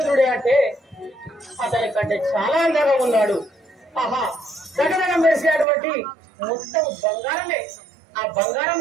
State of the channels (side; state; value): left; drops out; at 5.7 s